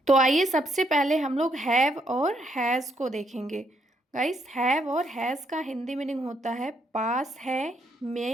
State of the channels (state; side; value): normal; both; correlation 0.74